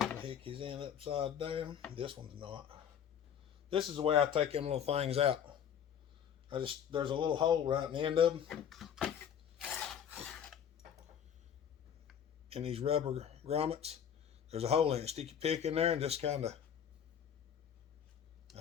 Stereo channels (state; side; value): quieter; right; 8.7 dB